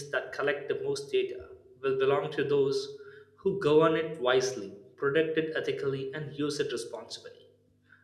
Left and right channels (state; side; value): identical; both; correlation 1.00